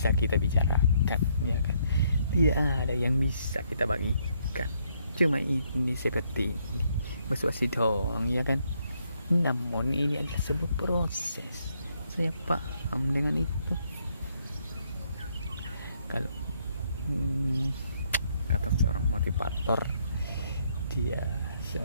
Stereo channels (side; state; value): both; inverted; correlation -0.72